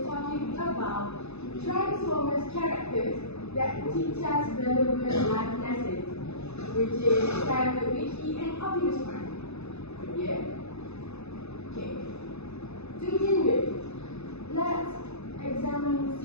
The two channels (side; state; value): right; late; 0.80 ms